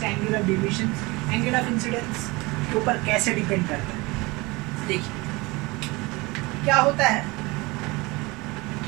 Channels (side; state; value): left; quieter; 23.9 dB